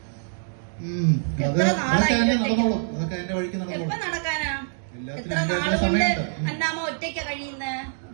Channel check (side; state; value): left; silent; digital silence